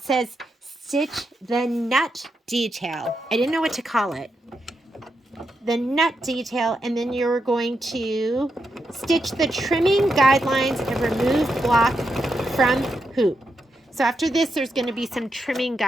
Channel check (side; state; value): both; normal; correlation 0.84